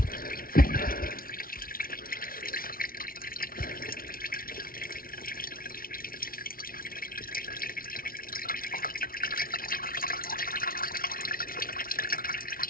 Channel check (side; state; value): right; late; 0.43 ms